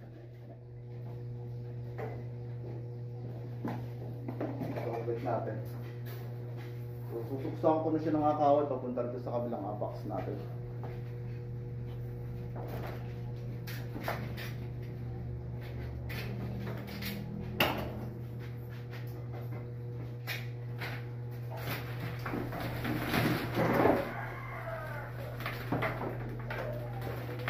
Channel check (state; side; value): identical; both; correlation 1.00